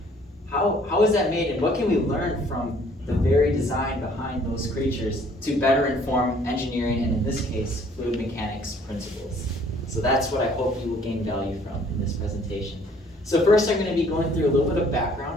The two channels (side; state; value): both; normal; correlation 0.58